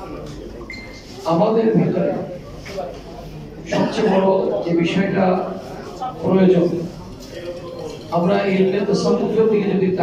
আমাদের ভিতরে সবচেয়ে বড় যে বিষয়টা প্রয়োজন, আমরা ইলমে তাসাউফের দিকে যদি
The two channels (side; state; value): both; identical; correlation 1.00